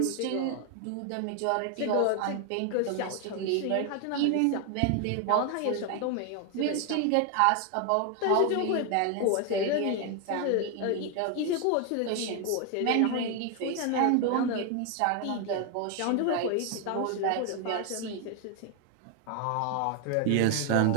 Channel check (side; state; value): both; different; correlation 0.01